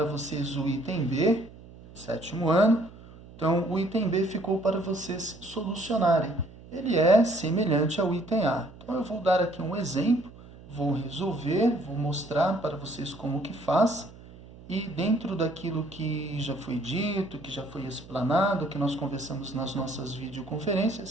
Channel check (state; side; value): noise; right; hum, 19 dB below the sound